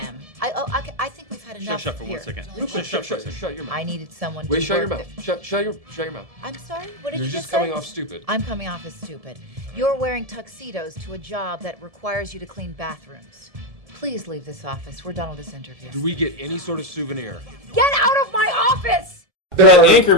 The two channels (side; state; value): left; late; 1.7 ms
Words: I think we've had enough. Shut for here. 1 second. Shut your mouth. I needed someone Wait, to shut your work mouth. Shut your mouth. I'm sorry? What did You're you just say? coming off stupid. I'm coming off as stupid. You're wearing tuxedos to a job that requires you to clean bathrooms. Please leave this office. We're done with this interview. Do we get any sort of souvenir? Get out of my office!